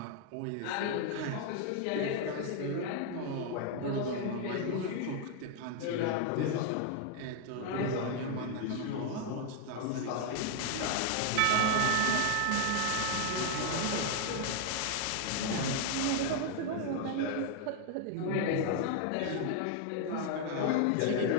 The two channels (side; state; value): both; different; correlation 0.00